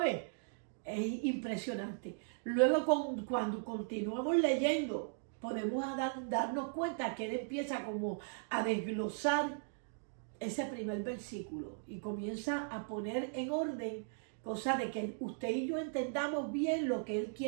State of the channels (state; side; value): silent; left; digital silence